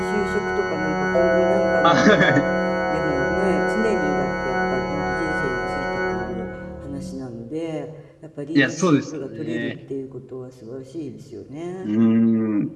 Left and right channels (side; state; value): both; identical; correlation 1.00